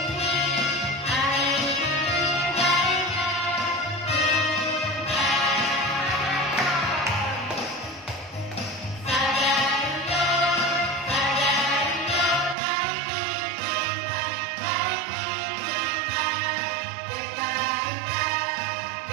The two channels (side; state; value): left; drops out; at 12.6 s